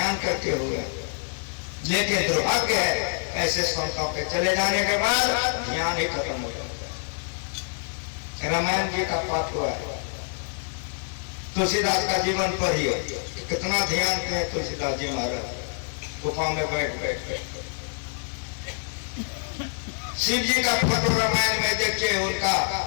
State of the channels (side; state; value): right; silent; 61 dB below the other